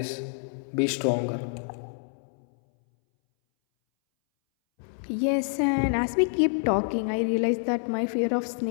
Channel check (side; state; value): right; silent; 60 dB below the other